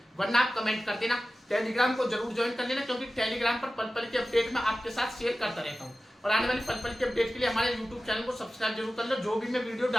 वरना आप कमेंट कर देना। टेलीग्राम को जरूर ज्वाइन कर लेना, क्योंकि टेलीग्राम पर पल पल के अपडेट मैं आपके साथ शेयर करता रहता हूँ। और आने वाली पल पल के अपडेट के लिए हमारे यूट्यूब चैनल को सब्सक्राइब जरूर कर लो। जो भी मैं वीडियो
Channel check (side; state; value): both; normal; correlation 0.95